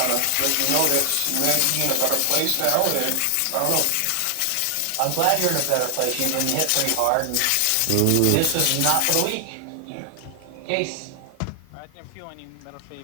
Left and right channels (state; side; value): different; both; correlation 0.00